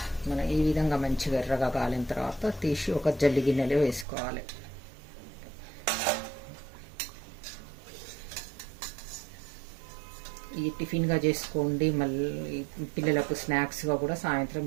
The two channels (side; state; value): left; drops out; at 4.0 s